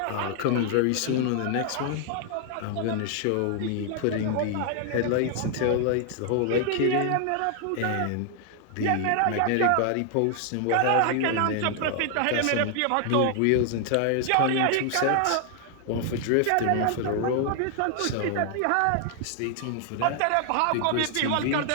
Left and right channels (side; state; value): both; different; correlation 0.00